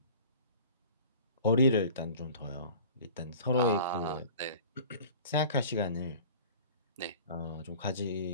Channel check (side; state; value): both; inverted; correlation -0.43